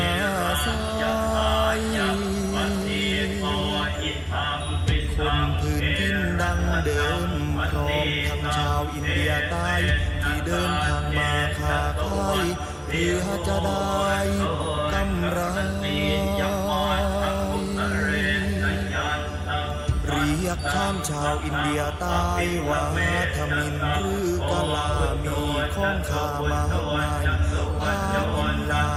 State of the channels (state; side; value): identical; both; correlation 1.00